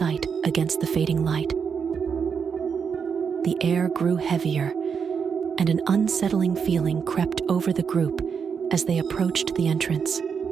against the fading light. The air grew heavier, and an unsettling feeling crept over the group as they approached the entrance.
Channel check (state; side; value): quieter; left; 6.5 dB